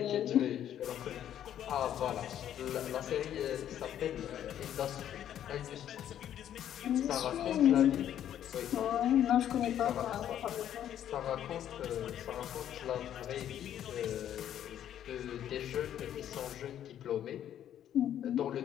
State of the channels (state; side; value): quieter; right; 10.6 dB